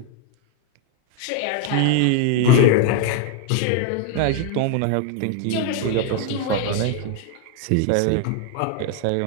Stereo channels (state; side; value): different; both; correlation 0.01